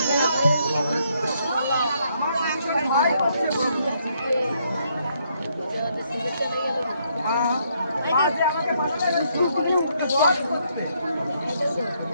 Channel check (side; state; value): both; inverted; correlation -0.73